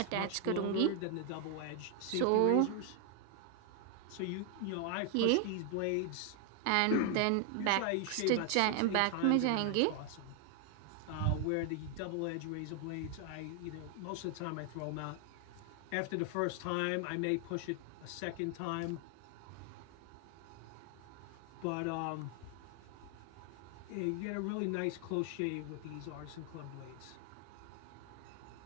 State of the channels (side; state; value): both; different; correlation 0.01